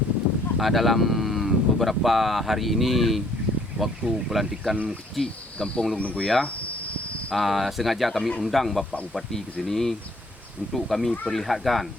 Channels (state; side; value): normal; both; correlation 0.62